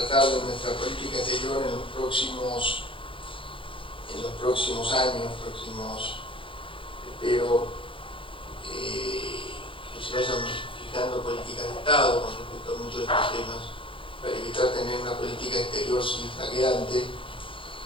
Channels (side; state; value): right; late; 0.25 ms